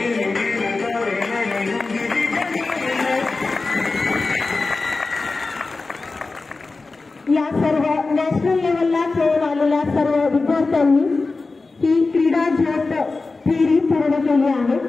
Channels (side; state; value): right; quieter; 3.7 dB